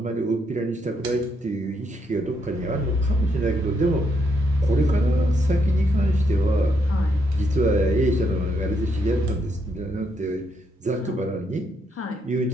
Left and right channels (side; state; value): both; normal; correlation 0.76